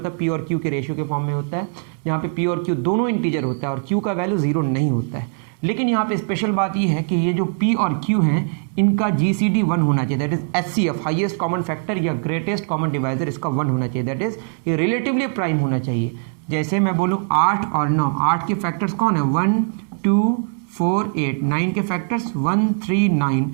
है p और q के रेशियो के फॉर्म में होता है, जहाँ पे p और q दोनों इंटीजर होता है और q का वैल्यू 0 नहीं होता है। लेकिन यहाँ पे स्पेशल बात ये है कि ये जो p और q हैं इनका GCD 1 होना चाहिए, that is HCF highest common factor या ग्रेटेस्ट कॉमन डिवाइजर इसका 1 होना चाहिए, दैट इज ये रिलेटिवली प्राइम होना चाहिए। जैसे मैं बोलूँ 8 और 9, 8 के फैक्टर्स कौन है? 1 2 4 8, 9 के फैक्टर्स 1 3 9,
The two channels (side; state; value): left; silent; 65 dB below the other